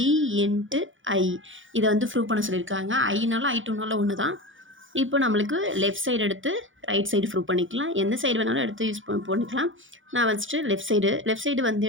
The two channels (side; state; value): left; late; 0.57 ms